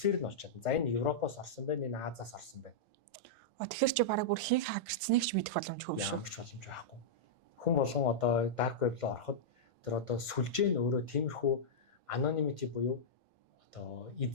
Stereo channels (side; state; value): both; normal; correlation -0.09